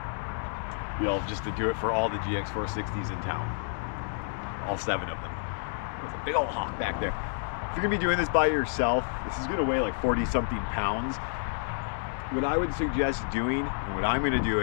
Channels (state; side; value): silent; right; digital silence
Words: You'll just to do it for all the GX460s in town, all 7 of them. There's a big old hawk back there. If you're gonna be doing this by yourself, this is gonna weigh like 40-something pounds. What I would suggest doing, and what I'm gonna do